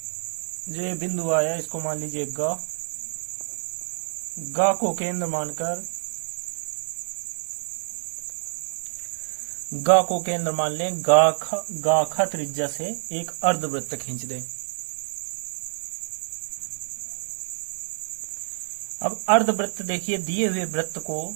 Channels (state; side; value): silent; left; digital silence